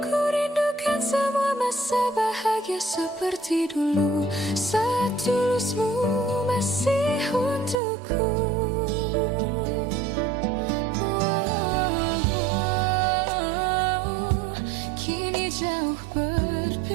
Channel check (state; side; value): drops out; left; at 7.8 s